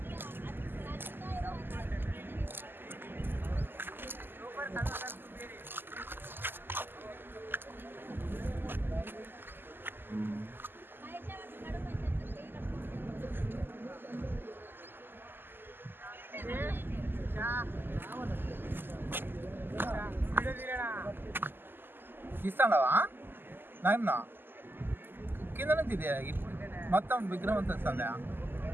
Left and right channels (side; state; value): left; late; 0.096 ms